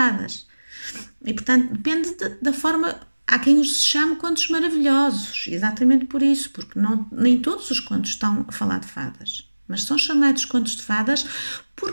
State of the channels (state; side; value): inverted; both; correlation -1.00